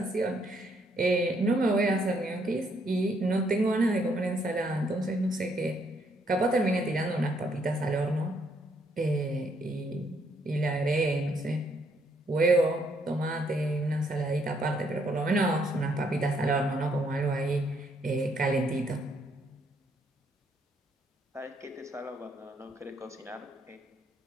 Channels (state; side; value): normal; both; correlation 0.71